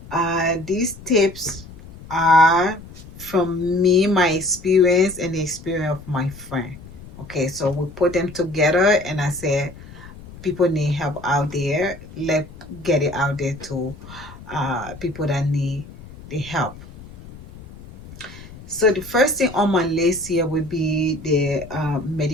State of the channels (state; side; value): noise; left; rumble, 17 dB below the sound